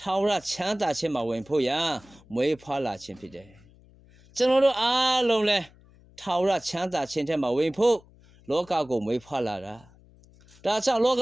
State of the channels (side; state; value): left; noise; hum, 26 dB below the sound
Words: ာဝရချမ်းသာခြင်းမှာဝင်ဖို့ရာမွေးဖွားလာခြင်းဖြစ်တယ်။ကျွန်တော်တို့အားလုံးလဲထာဝရချမ်းသာခြင်းထဲမှာဝင်ဖို့လောကကိုမွေးဖွားလာတာ။ဒါကြောင့်လောက